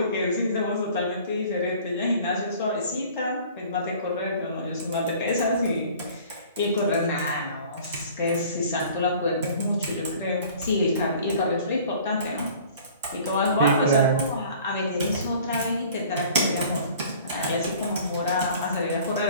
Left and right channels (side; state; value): both; inverted; correlation -0.49